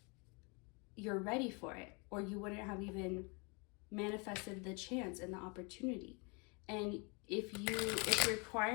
you're ready for it, or you wouldn't have even manifested the chance and the opportunity. And if it's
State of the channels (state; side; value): quieter; right; 31.7 dB